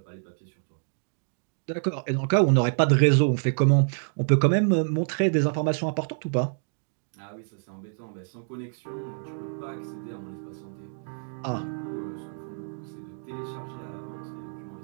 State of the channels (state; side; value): silent; left; digital silence